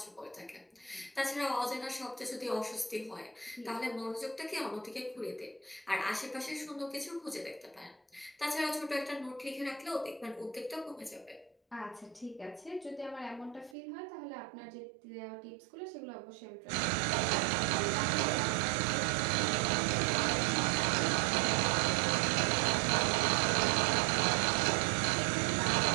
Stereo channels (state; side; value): drops out; left; at 13.8 s